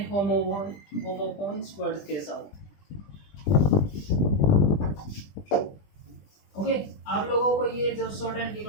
होमोफोन्स वर्ड्स के साथ। ओके, आप लोगों को ये जो शॉर्ट हैंड की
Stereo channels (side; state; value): right; late; 20 ms